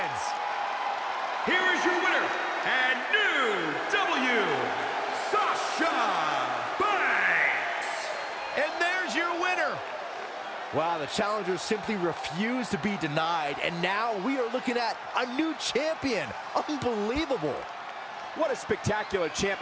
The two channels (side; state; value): both; identical; correlation 1.00